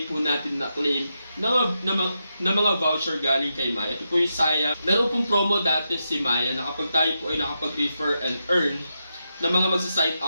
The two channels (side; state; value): both; inverted; correlation -0.86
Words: po natin na-claim na mga voucher galing kay Maya. Ito po yung sayang. Meron pong promo dati si Maya na kapag tayo po ay nakapag-refer and earn na mga magsa-sign